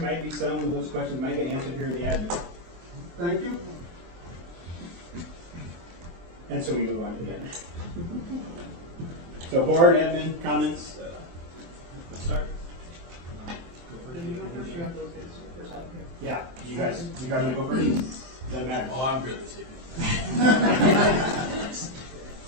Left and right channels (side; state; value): left; late; 23 ms